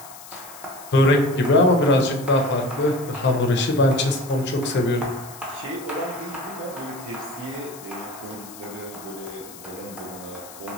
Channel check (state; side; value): noise; left; hiss, 17 dB below the sound